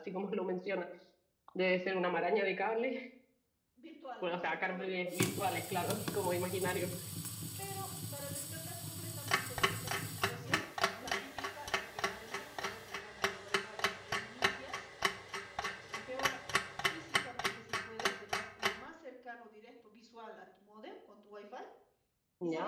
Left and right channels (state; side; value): identical; both; correlation 1.00